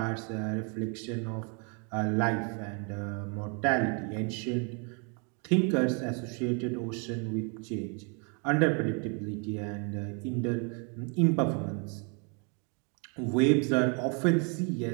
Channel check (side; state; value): left; quieter; 36.6 dB